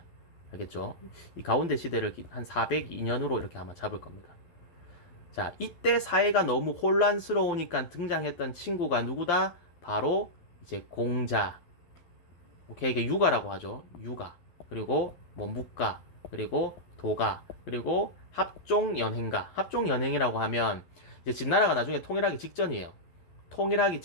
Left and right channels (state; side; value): late; right; 12 ms